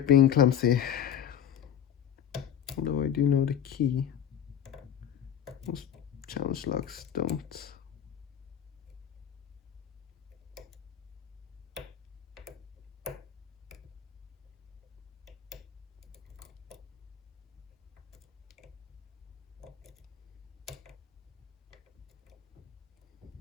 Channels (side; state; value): right; quieter; 9.4 dB